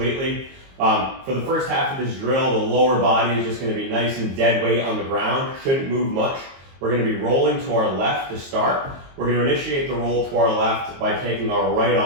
For the first half of this drill, the lower body is just going to be nice and dead weight on the ground. Shouldn't move much. We're going to be rolling to our left to start. We're going to initiate the roll to our left by taking our right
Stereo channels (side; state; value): left; late; 22 ms